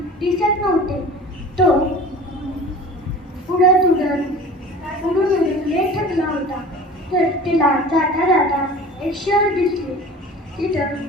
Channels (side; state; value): both; normal; correlation 0.40